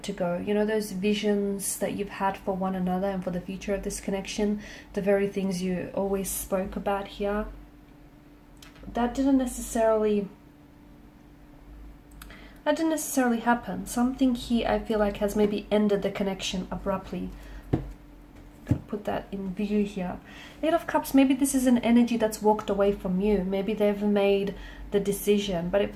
to go. Those visions that you've had for one another and for the future of this connection, the very things you always spoke about here, that didn't necessarily happen. Something here I feel like has maybe ended the connection abruptly. Put that in view here. Eight of Cups, maybe this is an energy that's walked away from you. Maybe they've made the decision, but it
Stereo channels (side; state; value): both; identical; correlation 1.00